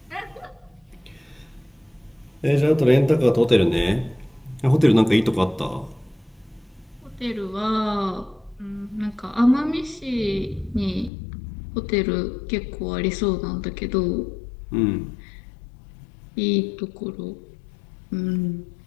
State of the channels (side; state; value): right; drops out; at 11.1 s